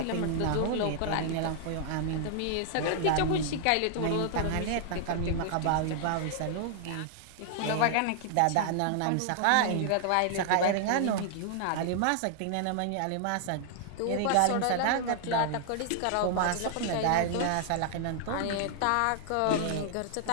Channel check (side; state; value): both; different; correlation 0.00